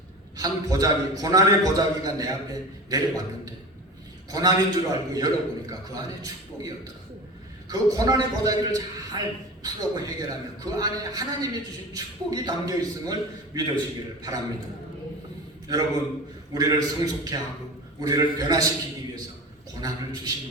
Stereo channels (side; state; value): both; normal; correlation 0.32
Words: 한 보자기, 고난의 보자기가 내 앞에 내려왔는데 고난인 줄 알고 열어보니까 그 안에 축복이었더라고요. 그 고난의 보자기를 잘 풀고 해결하면 그 안에 하나님이 주신 축복이 담겨 있음을 믿으시기를 바랍니다. 여러분, 우리를 성숙케 하고 우리를 변화시키기 위해서 고난을